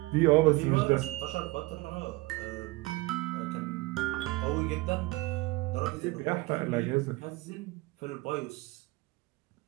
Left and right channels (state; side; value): quieter; left; 22.1 dB